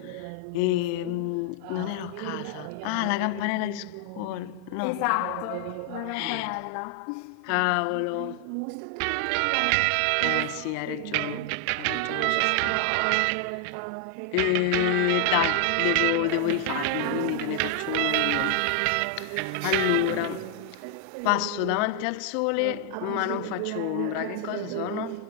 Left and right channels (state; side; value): different; both; correlation 0.00